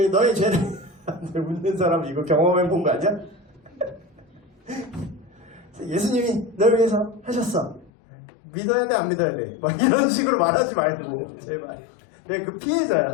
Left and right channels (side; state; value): right; drops out; at 7.9 s